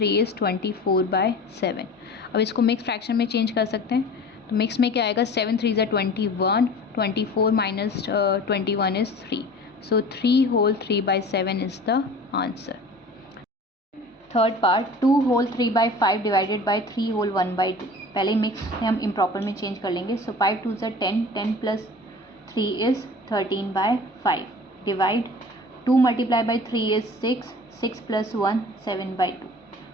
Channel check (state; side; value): normal; both; correlation 0.41